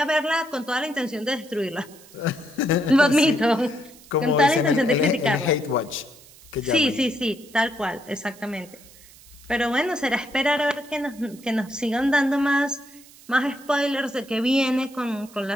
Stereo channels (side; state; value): right; noise; hiss, 23 dB below the sound